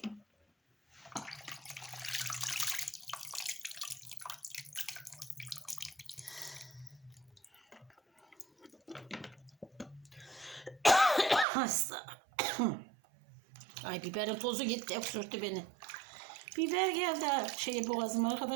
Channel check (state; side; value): drops out; left; at 11.5 s